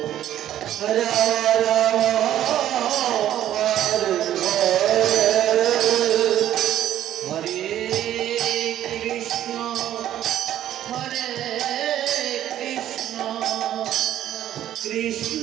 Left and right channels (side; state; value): left; quieter; 11.9 dB